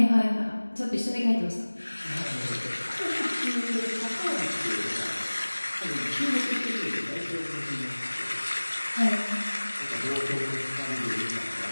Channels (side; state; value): both; inverted; correlation -1.00